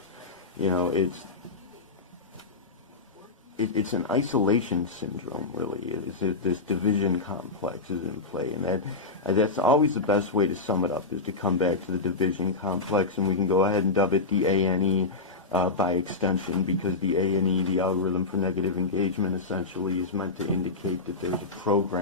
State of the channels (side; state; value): right; quieter; 3.8 dB